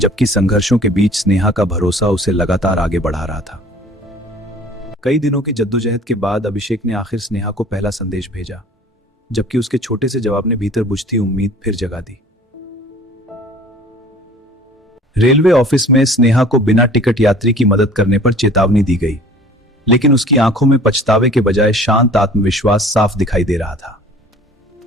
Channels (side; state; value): both; normal; correlation 0.48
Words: संघर्षों के बीच स्नेहा का भरोसा उसे लगातार आगे बढ़ा रहा था। कई दिनों की जद्दोजहद के बाद अभिषेक ने आखिर स्नेहा को पहला संदेश भेजा, जबकि उसके छोटे से जवाब ने भीतर बुझती उम्मीद फिर जगा दी। रेलवे ऑफिस में स्नेहा को बिना टिकट यात्री की मदद करने पर चेतावनी दी गई, लेकिन उसकी आंखों में पछतावे के बजाय शांत आत्मविश्वास साफ दिखाई दे रहा था।